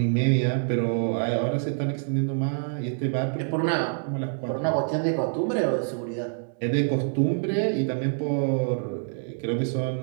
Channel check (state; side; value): silent; left; digital silence